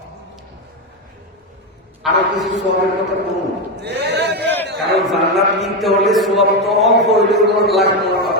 আরো কিছু সবের কথা বলুন কারণ জান্নাত কিনতে হলে সব তো অল্প হইলে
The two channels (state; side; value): normal; both; correlation 0.10